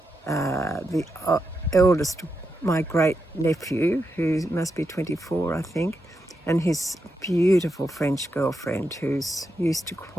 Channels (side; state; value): both; normal; correlation 0.85